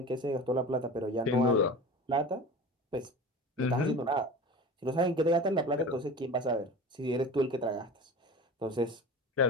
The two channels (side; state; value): both; normal; correlation 0.33